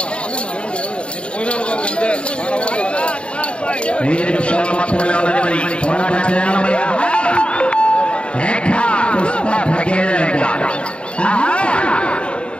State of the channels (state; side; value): late; right; 0.058 ms